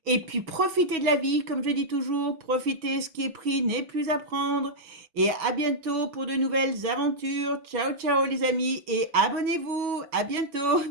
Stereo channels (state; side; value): late; left; 6.2 ms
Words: Et puis, profitez de la vie, comme je dis toujours. Profitez, ce qui est pris n'est plus à prendre. Et à bientôt pour de nouvelles aventures. Ciao, ciao, les amis. Et abonnez-vous. À